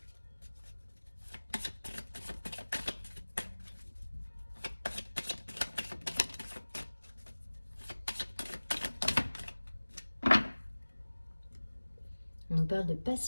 On nous parle de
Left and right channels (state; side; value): inverted; both; correlation -1.00